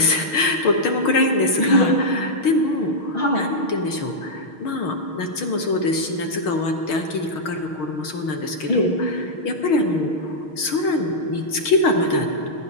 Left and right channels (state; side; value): late; right; 6.4 ms